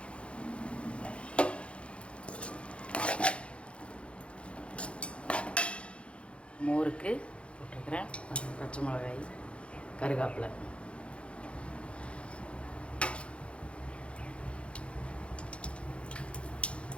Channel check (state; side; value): late; right; 0.060 ms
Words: மோருக்கு போட்டுருக்கிறேன். பச்சை மிளகாய், கருவேப்பிலை.